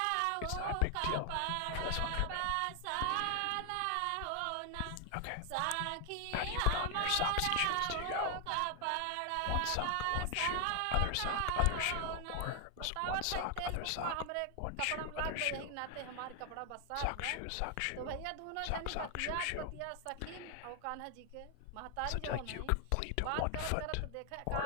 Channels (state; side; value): different; both; correlation 0.00